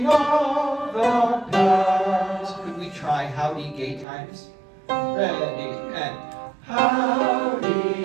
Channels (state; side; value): drops out; left; at 4.0 s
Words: of the past. Could we try howdy, gay times? Ready, and